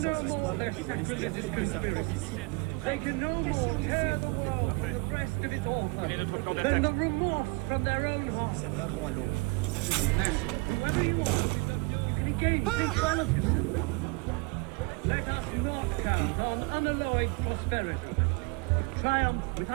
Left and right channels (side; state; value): left; quieter; 27.1 dB